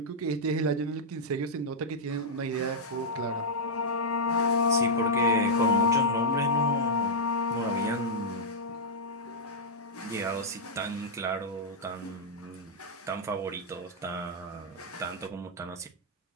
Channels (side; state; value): both; normal; correlation -0.07